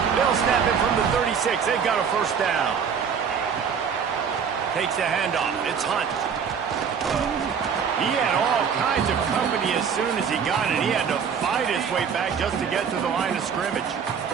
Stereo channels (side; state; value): left; quieter; 6.8 dB